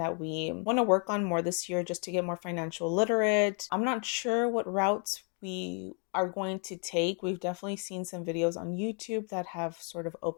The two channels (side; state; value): right; quieter; 39.5 dB